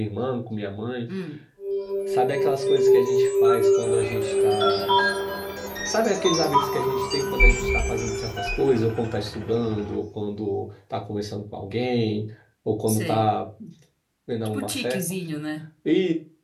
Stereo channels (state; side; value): identical; both; correlation 1.00